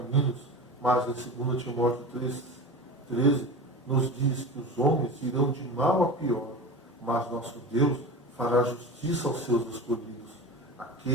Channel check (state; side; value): normal; both; correlation 0.30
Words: mas em 2 Timóteo 3,13 nos diz que os homens irão de mal a pior, mas nosso Deus fará justiça aos seus escolhidos,